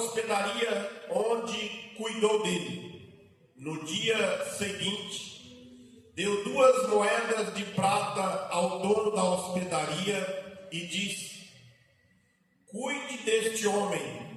onde cuidou dele. No dia seguinte, deu 2 moedas de prata ao dono da hospedaria e disse: cuide deste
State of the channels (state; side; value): identical; both; correlation 1.00